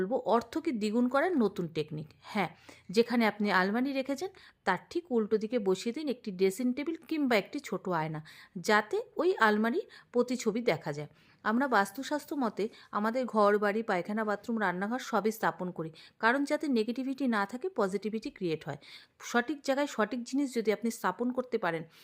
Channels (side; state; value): both; identical; correlation 1.00